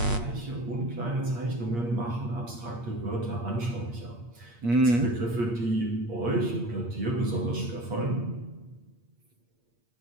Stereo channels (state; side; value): late; left; 8.5 ms